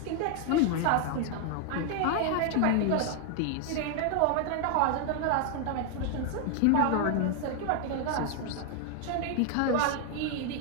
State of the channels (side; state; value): both; different; correlation 0.00